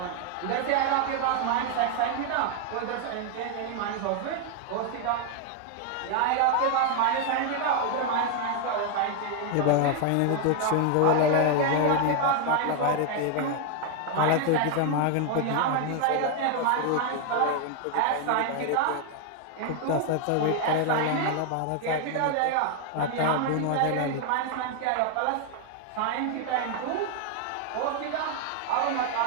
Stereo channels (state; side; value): different; both; correlation 0.00